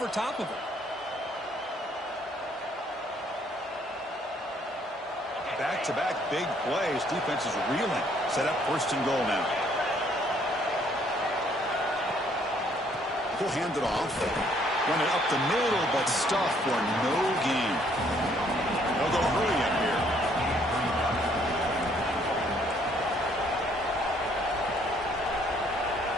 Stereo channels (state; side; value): normal; both; correlation 0.65